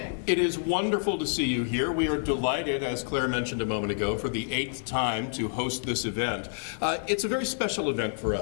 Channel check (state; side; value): silent; right; 59 dB below the other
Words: It is wonderful to see you here. We are delighted, as Claire mentioned a moment ago, for the 8th time to host this event. It's a very special event for